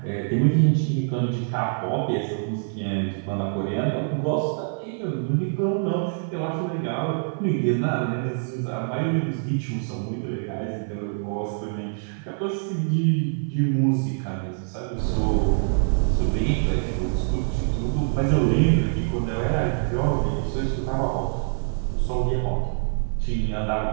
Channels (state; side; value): silent; left; 55 dB below the other